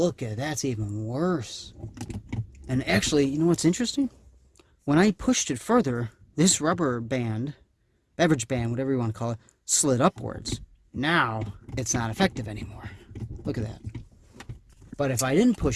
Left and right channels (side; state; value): both; identical; correlation 1.00